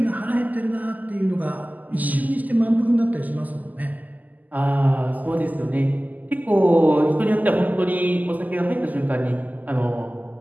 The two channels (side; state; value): left; late; 0.080 ms